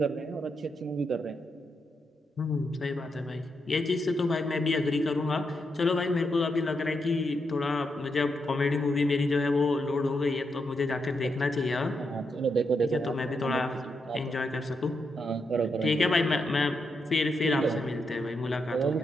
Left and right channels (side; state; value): both; normal; correlation 0.83